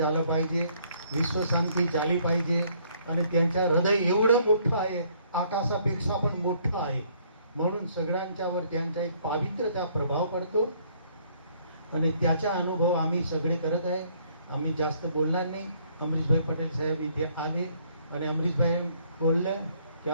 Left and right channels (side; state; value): both; inverted; correlation -0.64